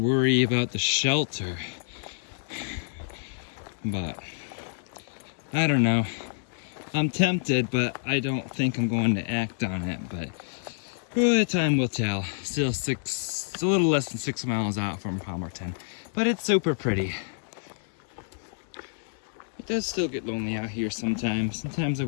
about the shelter. But I don't know. I'm tempted, but I don't think I'm going to act on it. But time will tell. Still it's a little less than 6 miles out from Palmerton, but it's super pretty. It does still get lonely out here sometimes. Sometimes I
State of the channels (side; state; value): right; silent; 59 dB below the other